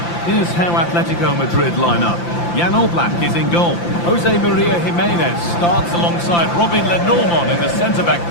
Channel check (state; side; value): late; right; 5.8 ms